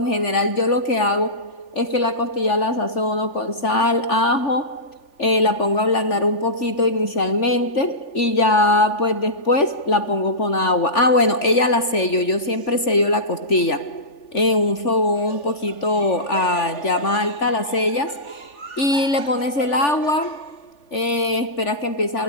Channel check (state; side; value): late; right; 3.4 ms